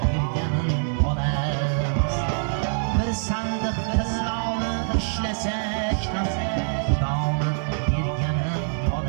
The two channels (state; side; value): silent; left; 62 dB below the other